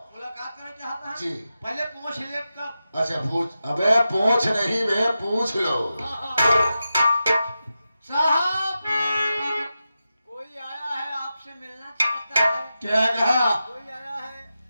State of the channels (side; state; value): both; inverted; correlation -0.91